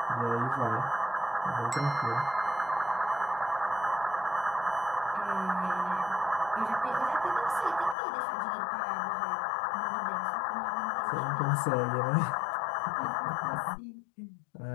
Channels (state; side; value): drops out; right; at 8.0 s